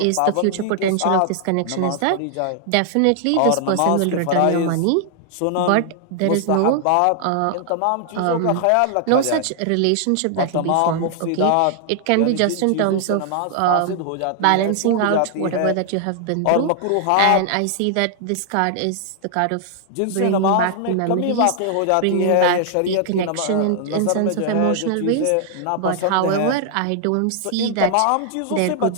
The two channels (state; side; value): different; both; correlation 0.00